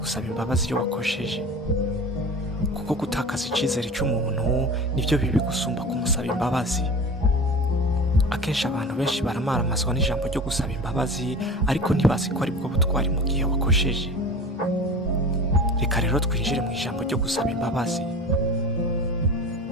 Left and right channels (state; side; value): normal; both; correlation 0.35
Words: imbabazi iyo wakosheje, kuko gutakaza icizere cy'umuntu nivyo bibi gusumba kumusaba imbabazi. Akenshi abantu benshi baramaramazwa n'ijambo ryo gusaba imbabazi, ariko ntibazi ko ari bwo butwari mu gihe wakosheje. Reka rero twinjire mu ijambo ryo gusaba imbabazi.